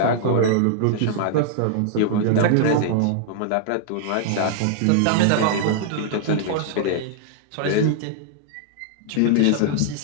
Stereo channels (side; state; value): both; different; correlation 0.00